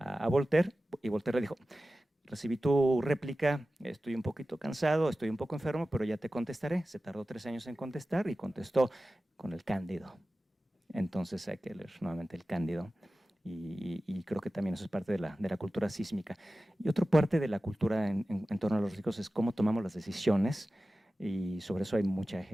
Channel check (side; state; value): both; normal; correlation 0.95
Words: Voltaire, y Voltaire le dijo, recibí tu réplica, estoy un poquito cansado, estoy un poco enfermo, pero ya te contestaré. Se tardó 3 años en contestar y contestó con el Cándido. Entonces hay que leer nuevamente el Cándido. Y creo que también eso es parte de la cultura sísmica. Y otra parte de la cultura en torno a los riesgos es cómo tomamos las decisiones, y sobre eso hay mucha